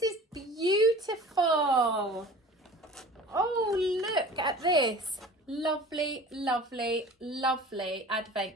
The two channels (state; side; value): normal; both; correlation 0.41